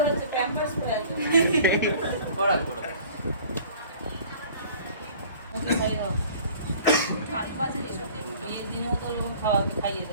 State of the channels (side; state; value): both; inverted; correlation -0.48